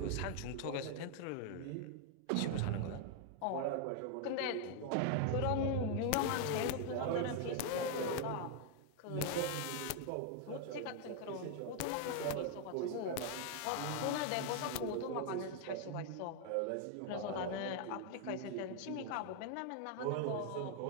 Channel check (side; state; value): both; different; correlation 0.00